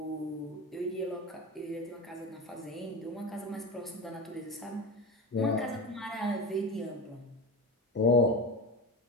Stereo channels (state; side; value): normal; both; correlation 0.24